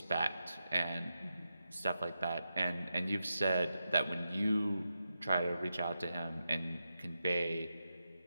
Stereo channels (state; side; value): inverted; both; correlation -0.88